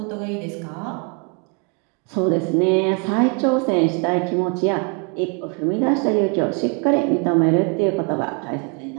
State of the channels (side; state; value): left; quieter; 35.2 dB